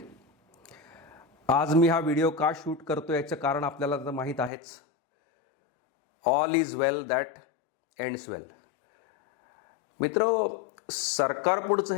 आज मी हा व्हिडिओ का शूट करतो याचं कारण आपल्याला तर माहीत आहेच. All is well that ends well. मित्र, सरकारपुढचं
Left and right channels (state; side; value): drops out; right; at 4.5 s